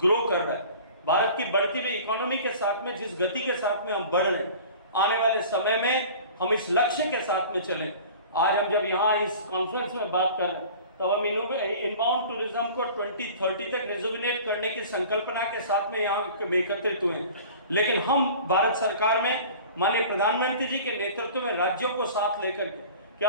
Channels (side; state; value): both; inverted; correlation -0.42